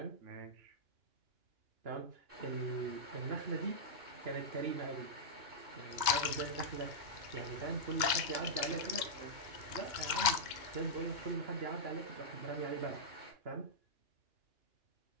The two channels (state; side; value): late; left; 2.2 ms